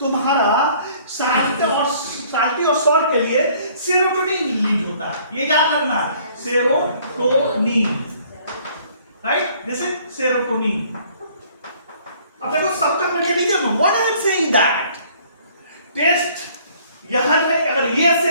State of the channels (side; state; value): both; inverted; correlation -0.58